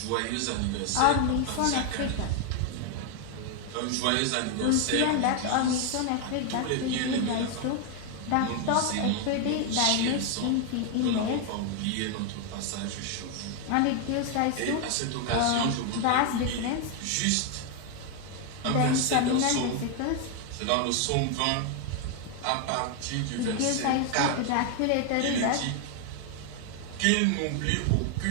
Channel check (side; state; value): both; different; correlation 0.01